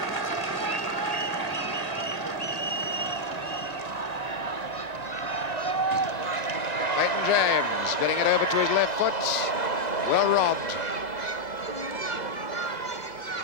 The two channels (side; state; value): left; late; 4.8 ms